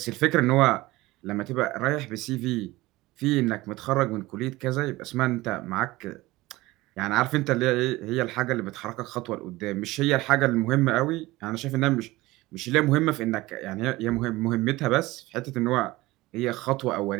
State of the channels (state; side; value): quieter; left; 19.3 dB